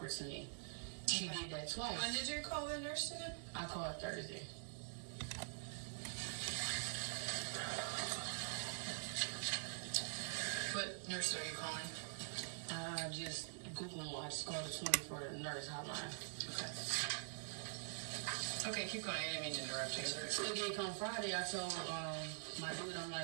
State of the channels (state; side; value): silent; left; digital silence